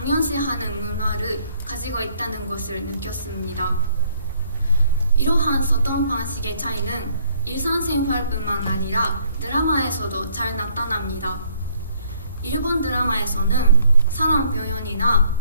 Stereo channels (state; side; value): inverted; both; correlation -0.65